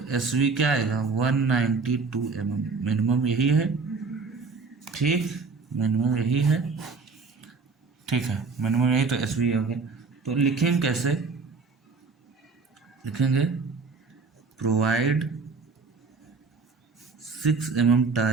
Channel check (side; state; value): left; quieter; 4.5 dB